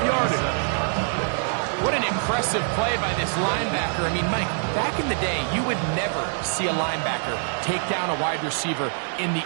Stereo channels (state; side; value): silent; left; 62 dB below the other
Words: yardage. What an impressive play by this linebacker. I mean, Mike, back in the day, you would never see a linebacker take down a wide receiver in the